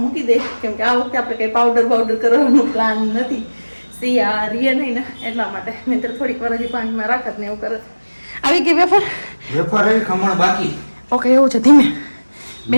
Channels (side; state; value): both; inverted; correlation -1.00